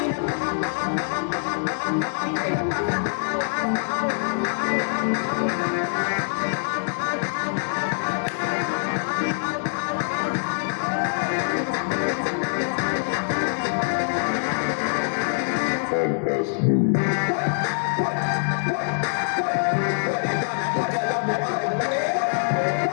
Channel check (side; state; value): right; silent; 62 dB below the other